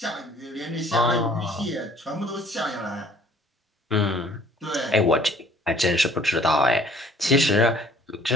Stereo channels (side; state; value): both; normal; correlation 0.56